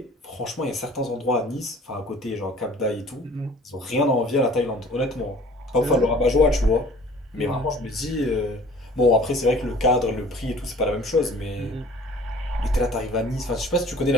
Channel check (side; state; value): both; normal; correlation 0.49